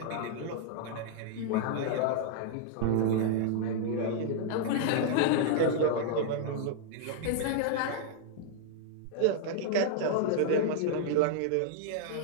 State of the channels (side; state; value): both; different; correlation -0.01